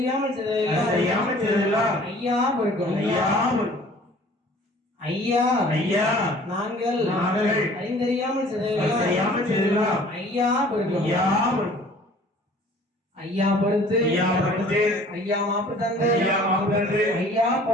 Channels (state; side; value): normal; both; correlation 0.51